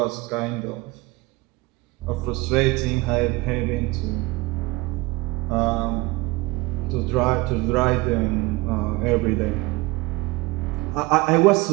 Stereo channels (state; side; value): quieter; left; 21.8 dB